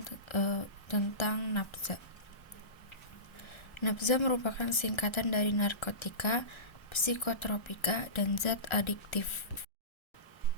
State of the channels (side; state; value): right; late; 1.3 ms